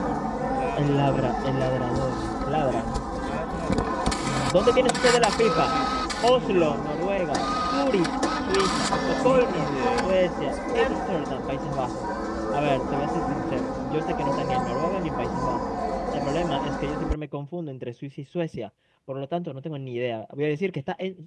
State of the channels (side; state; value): both; identical; correlation 1.00